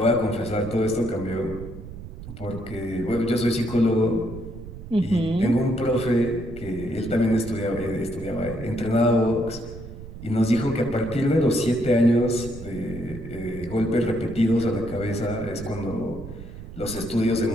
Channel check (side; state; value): right; noise; rumble, 12 dB below the sound